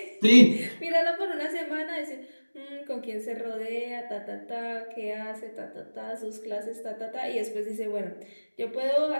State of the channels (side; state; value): both; inverted; correlation -1.00